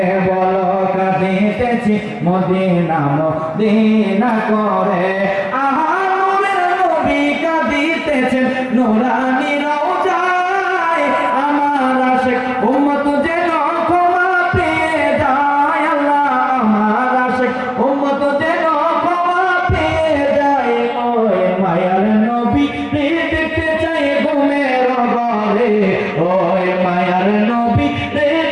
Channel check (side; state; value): both; identical; correlation 1.00